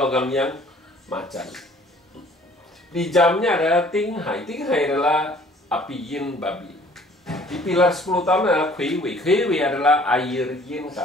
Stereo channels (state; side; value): normal; both; correlation 0.55